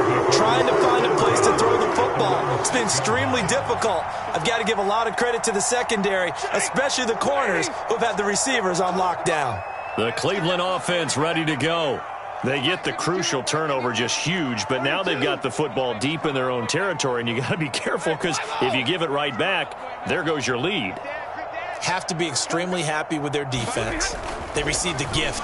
him. Trying to find a place to throw the football. It's been extremely difficult. I've got to give a lot of credit to the secondary, especially the corners who've had the receivers on lockdown. The Cleveland offense ready to go. They get the crucial turnover, just huge, but now they've got the football deep in their own territory, and you got to be careful because if you give it right back, there goes your lead. Have to be extremely happy with their defense. They received a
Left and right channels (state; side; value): identical; both; correlation 1.00